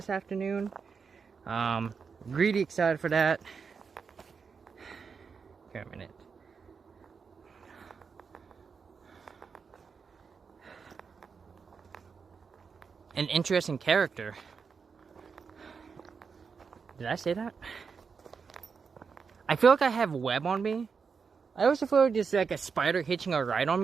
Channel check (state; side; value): quieter; left; 5.6 dB